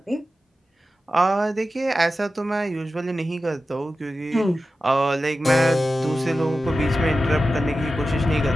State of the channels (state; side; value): normal; both; correlation 0.93